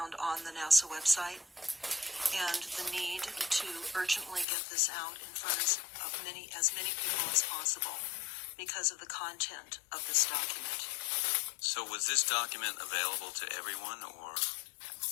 on the NASA website, and the need to urgently get this out in front of as many people as possible because of the content of this document. So was this document available to everyone, or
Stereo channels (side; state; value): right; drops out; at 4.5 s